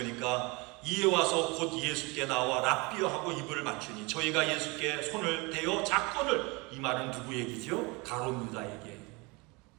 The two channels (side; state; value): left; quieter; 26.7 dB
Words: 이에 와서 곧 예수께 나와 랍비여 하고 입을 맞추니 저희가 예수께 손을 대어 작건을, 이 말은 누구 얘기죠? 가룟 유다 얘기예요.